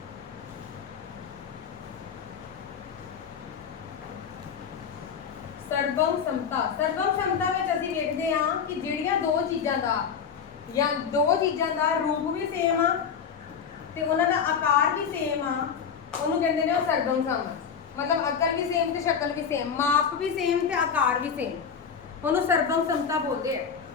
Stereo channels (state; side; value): quieter; right; 6.9 dB